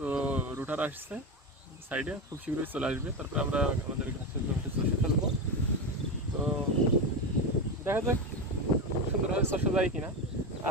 রুটার আসছে সাইডে, খুব শীঘ্রই চলে আসবে। তারপরে আমরা আমাদের ঘাসের জমিটা চষে ফেলবো। তো দেখা যাক সুন্দরভাবে চষে যায় কিনা।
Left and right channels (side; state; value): both; normal; correlation 0.16